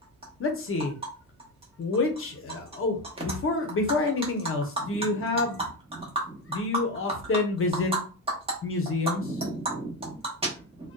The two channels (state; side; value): normal; both; correlation 0.17